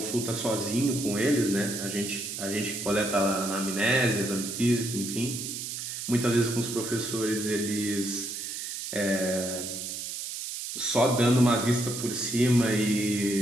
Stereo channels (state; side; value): noise; right; hiss, 6 dB below the sound